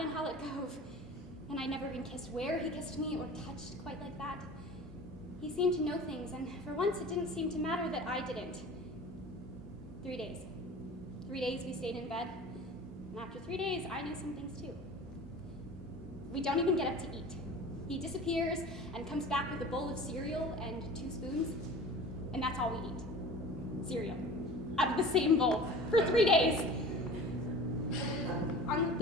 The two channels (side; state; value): both; normal; correlation 0.39